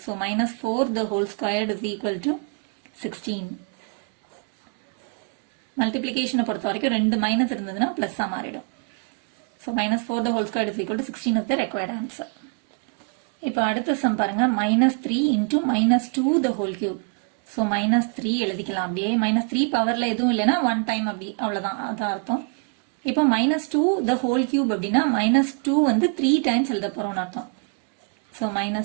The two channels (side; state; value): left; quieter; 37.7 dB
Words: So -4 the whole squared is equal to 16. மல்டிப்ளிகேஷனை பொறுத்த வரைக்கும் 2 மைனஸ் இருந்ததுன்னா பிளஸ்ஸாக மாறிடும். So -4 the whole squared is equal to 16 is the required answer. இப்போ அடுத்த சம் பாருங்க, -3 into -2 the whole cube. So -3 எழுதிக்கலாம் அப்படியே. -3 பவர்ல எதுவும் இல்லைன்னா 1 time அப்படி, அவ்வளோதான், அது அர்த்தம். இப்போ -2 the whole cube அப்படின்னா -2 வந்து 3 times எழுத போறோம்னு அர்த்தம். ஸோ